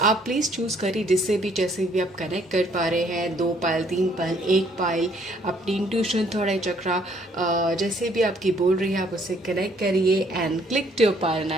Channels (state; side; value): normal; both; correlation 0.64